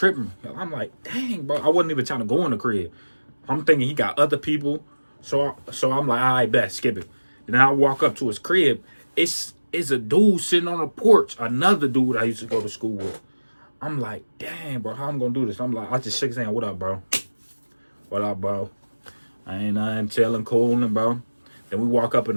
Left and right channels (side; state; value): both; inverted; correlation -1.00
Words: I'm like, dang, bro. I wasn't even trying to go in the crib. I'm thinking he got other people. So I'm like, I bet, skip it. Then I walk up to his crib. It's a dude sitting on the porch. Another dude I used to go to school with. I'm like, dang, bro, how I'm gonna do this? I'm like, I just shake his hand. What up, bro? What up, bro? I ain't nothing, chilling, cooling, bro. Then we walk up